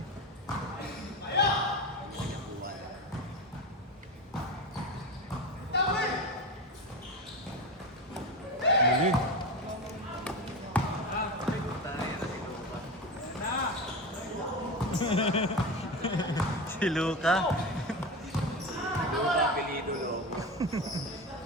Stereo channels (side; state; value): both; normal; correlation 0.22